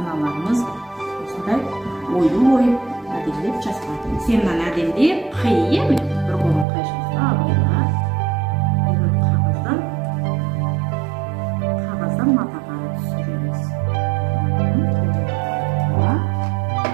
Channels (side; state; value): left; drops out; at 6.7 s